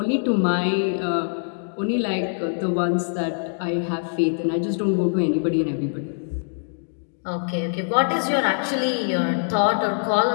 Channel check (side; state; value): right; silent; digital silence